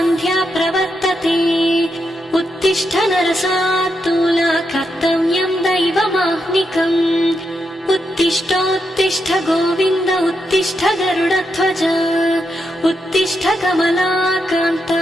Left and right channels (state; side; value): normal; both; correlation 0.83